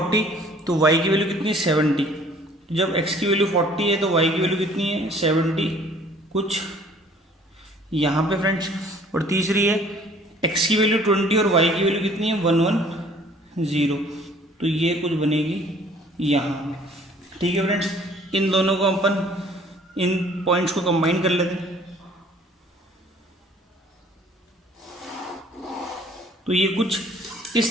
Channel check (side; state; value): both; normal; correlation 0.55